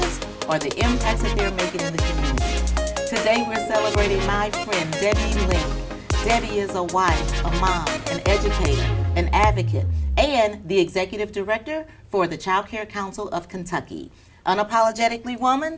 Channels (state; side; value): identical; both; correlation 1.00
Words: or the impacts that they're making in the community. Today we're celebrating my friend Debbie Link. Debbie is a wife, a mom, an educator, an advocate, and the executive director for the Child Care Council of Kentucky. Unapologetically